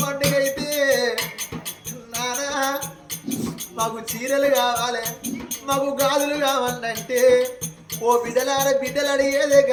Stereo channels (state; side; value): identical; both; correlation 1.00